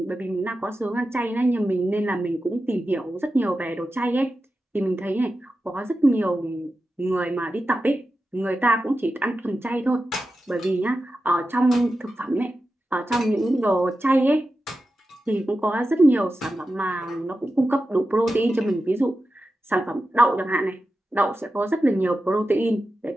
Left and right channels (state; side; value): normal; both; correlation 0.92